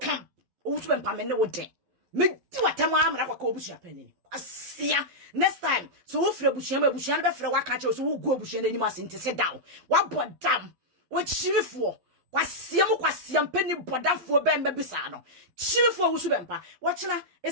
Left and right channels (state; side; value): late; left; 12 ms